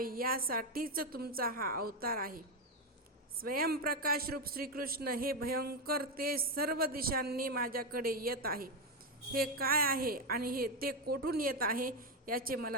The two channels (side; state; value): both; normal; correlation 0.08